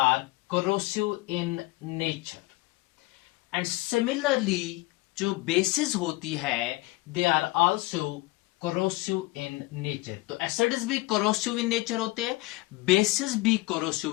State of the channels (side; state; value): right; quieter; 20.9 dB